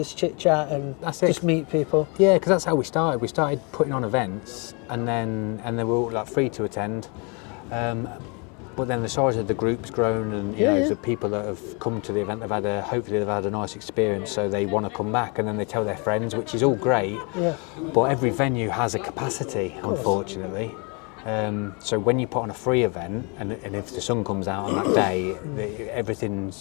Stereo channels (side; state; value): right; quieter; 32.8 dB